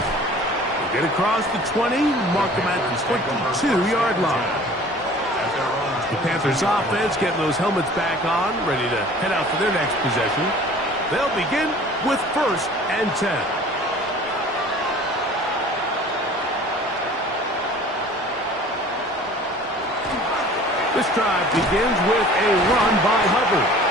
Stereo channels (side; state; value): both; normal; correlation 0.47